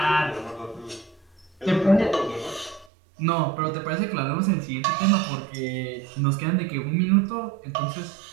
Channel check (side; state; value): left; drops out; at 2.9 s